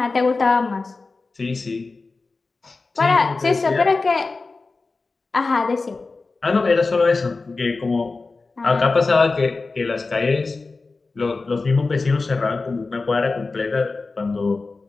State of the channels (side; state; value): right; quieter; 3.8 dB